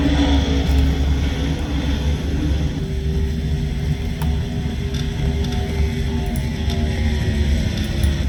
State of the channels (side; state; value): both; identical; correlation 1.00